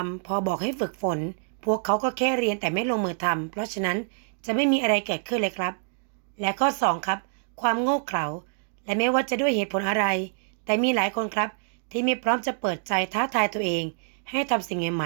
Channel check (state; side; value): silent; left; digital silence